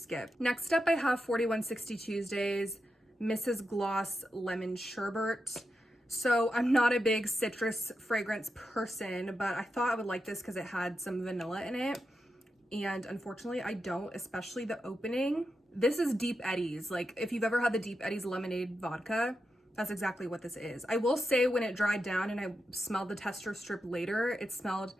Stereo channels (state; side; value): normal; both; correlation 0.87